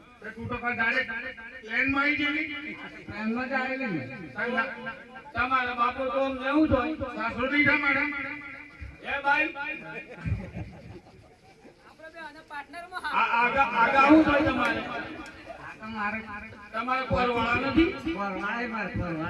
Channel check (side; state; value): both; identical; correlation 1.00